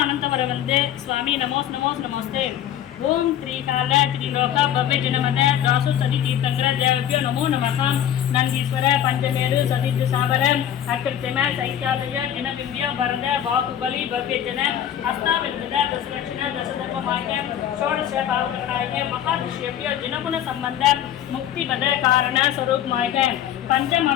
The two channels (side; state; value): right; quieter; 10.5 dB